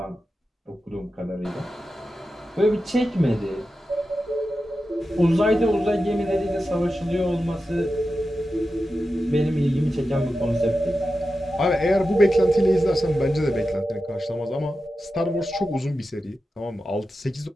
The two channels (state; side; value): normal; both; correlation 0.91